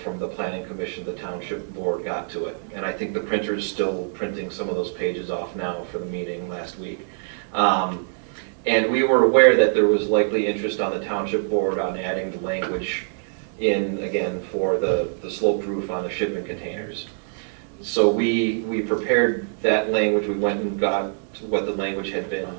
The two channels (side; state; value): left; silent; digital silence